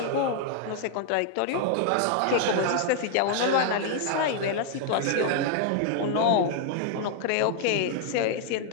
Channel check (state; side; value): different; both; correlation -0.01